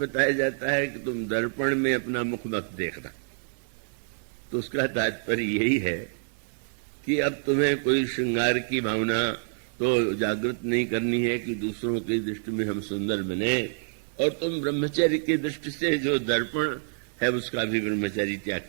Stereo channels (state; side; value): silent; left; digital silence